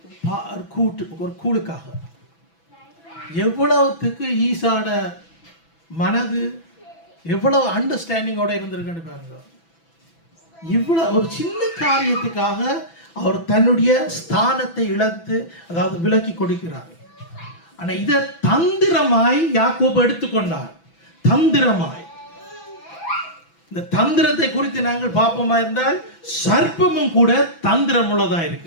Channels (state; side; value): late; right; 6.0 ms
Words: கூழுக்காக. எவ்வளவுத்துக்கு ஈசாட மனது எவ்வளவு அண்டர்ஸ்டாண்டிங்கோட இருந்திருக்குன்னு பாருங்க. இவ்வளவு ஒரு சின்ன காரியத்துக்காக அவர் தன்னுடைய ஸ்தானத்தை இழந்து, அதாவது விலக்கி கொடுக்கிறார். ஆனால் இதை தந்திரமாய் யாக்கோபு எடுத்துக்கொண்டார். தந்திரமாய். இந்த தந்திரத்தை குறித்து நாங்கள் பார்ப்போமா இருந்தால், சர்ப்பமும் கூட தந்திரம் உள்ளதா